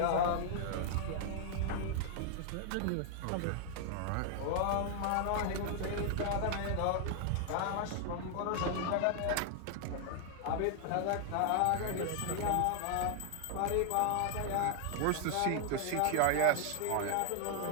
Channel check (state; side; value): different; both; correlation 0.00